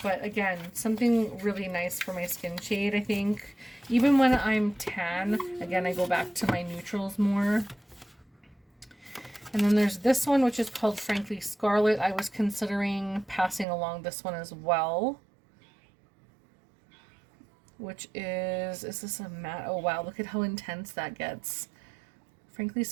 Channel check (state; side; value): drops out; left; at 13.7 s